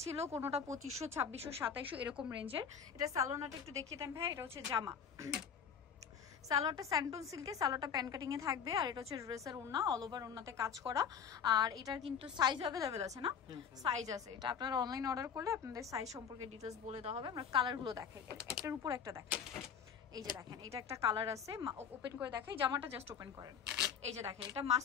ছিল কোনোটা 2500, 2600, 2700 এরকম রেঞ্জের। এটা সালোনাটা একটু দেখিয়ে দেন ভাই। এটা হচ্ছে জামা, সালোয়ারটা স্যান্টুন সিল্কে, সালোয়ারটা প্যান কাটিং এ থাকবে। আর এটা হচ্ছে ড্রেসের ওড়না, অল ওভার ওড়নাতে কাজ করা। আর এটার কিন্তু সাইজ অ্যাভেলেবেল আছে না? সাইজ আছে। এটা আপনারা অনলাইন অর্ডার করলে আপনাদের সাইজ সম্পর্কে ডিটেলস বলে দেওয়া হবে। আমরা কালারগুলো দেখাই, একটার উপর একটা দেখাই। এই যে দেখেন এটা একটা কালার আছে, ওপেন করে দেখাই। জামাটা জাস্ট ওপেন করেন। এই যে দেখেন এটা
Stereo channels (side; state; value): right; quieter; 7.3 dB